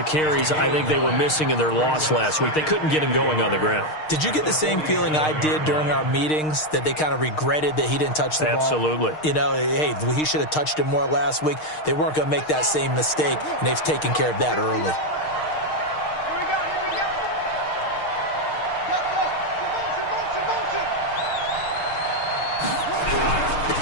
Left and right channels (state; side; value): late; right; 6.5 ms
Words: carries I think they were missing in their loss last week. They couldn't get him going on the ground. Did you get the same feeling I did during our meetings, that they kind of regretted that he didn't touch the ball? Absolutely. You know, hey, he should have touched it more last week. They weren't going to make that same mistake, and they've taken care of that early.